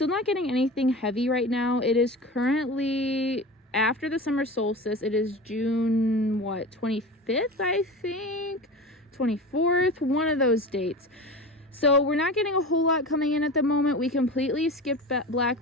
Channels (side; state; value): both; normal; correlation 0.31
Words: not getting anything heavy right now. It is currently after the summer solstice. It is June 25th, I think, 24th, one of those dates. So we're not getting a whole lot coming in at the moment. We completely skipped black